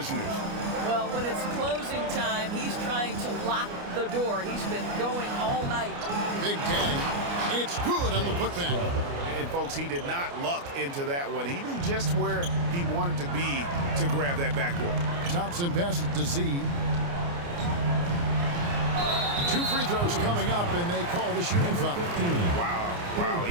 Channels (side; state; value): left; late; 29 ms